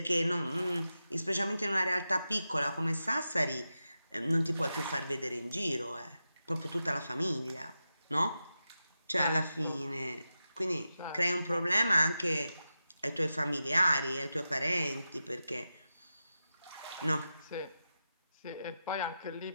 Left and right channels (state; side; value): inverted; both; correlation -0.91